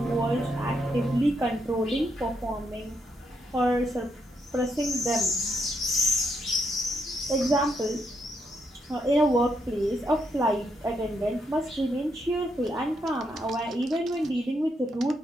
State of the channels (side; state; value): both; normal; correlation 0.78